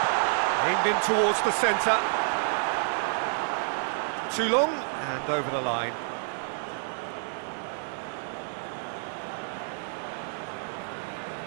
Aimed in towards the centre. Too long, and over the line.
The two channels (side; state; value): left; silent; 59 dB below the other